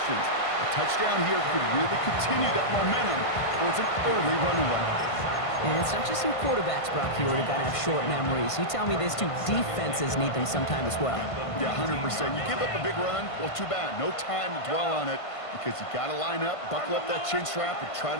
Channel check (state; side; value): late; right; 1.5 ms